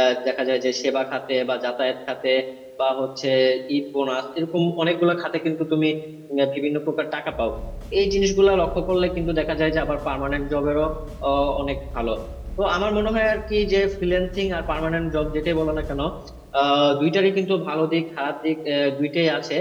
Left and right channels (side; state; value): both; identical; correlation 1.00